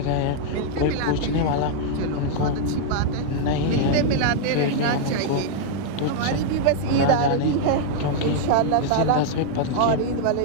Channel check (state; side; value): different; both; correlation -0.01